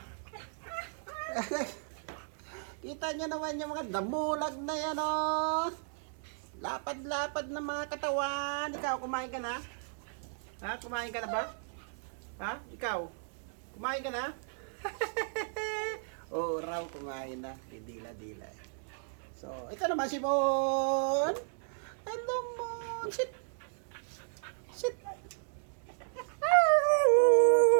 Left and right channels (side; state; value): left; silent; digital silence